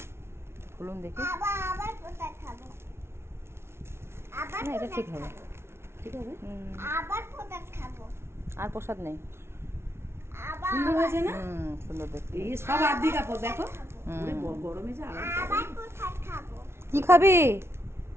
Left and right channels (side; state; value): left; late; 0.12 ms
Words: খুলুন দেখি। আবার পোশাক খাবো। আবার না, এটা ঠিক হবে। ঠিক হবে, আবার পোশাক খাবো। আর প্রসাদ নেই। আবার সুন্দর হয়েছে না? সুন্দর দেখতে। এই সব আদি কাপড় দেখো। ওরে গরমে যে আরাম। আবার পোশাক খাবো। কি খাবি